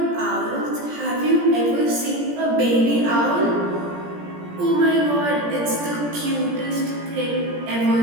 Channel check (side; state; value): left; late; 17 ms